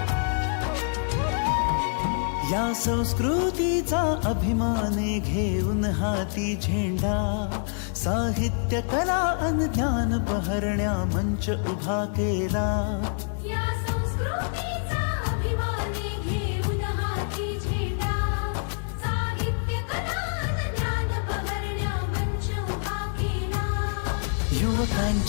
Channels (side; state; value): right; silent; digital silence